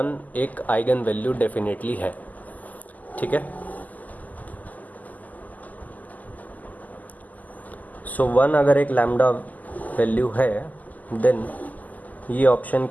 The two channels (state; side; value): late; right; 0.080 ms